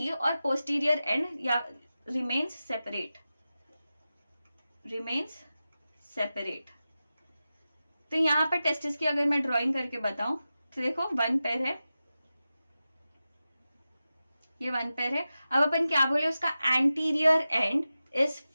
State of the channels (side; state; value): both; inverted; correlation -0.93